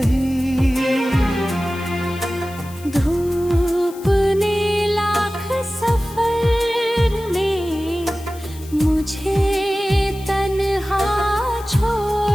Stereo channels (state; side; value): noise; left; hiss, 20 dB below the sound